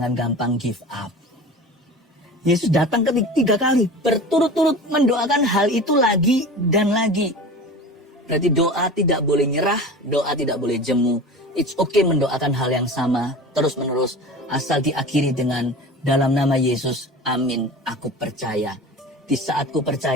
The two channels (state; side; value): normal; both; correlation 0.35